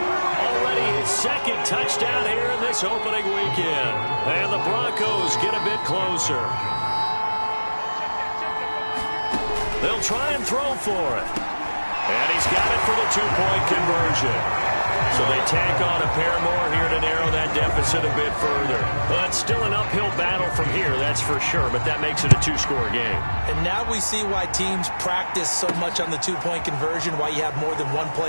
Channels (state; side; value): inverted; both; correlation -1.00